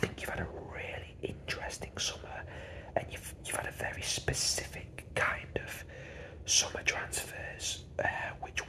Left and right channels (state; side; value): identical; both; correlation 1.00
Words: you've had a really interesting summer, and you've had a very specific kind of summer transfers, which